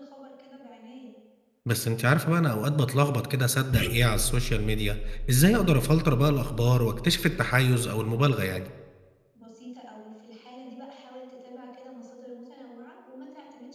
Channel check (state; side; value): identical; both; correlation 1.00